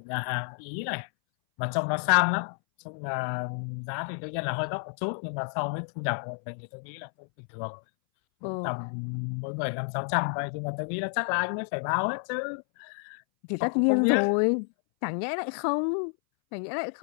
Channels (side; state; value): right; silent; 58 dB below the other